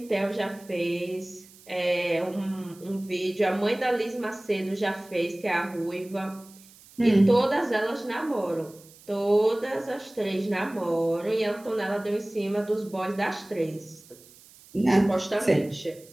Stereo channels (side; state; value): right; noise; hiss, 24 dB below the sound